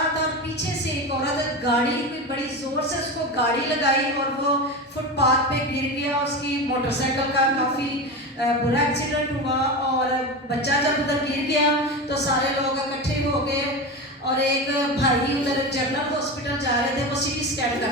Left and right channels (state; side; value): normal; both; correlation 0.23